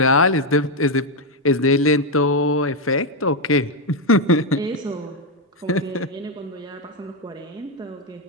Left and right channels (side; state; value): both; normal; correlation 0.04